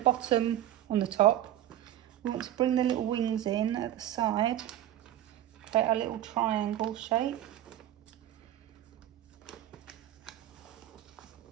on the top, we want to bring the little wings in at the side, create a little triangle shape.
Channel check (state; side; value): quieter; left; 12.4 dB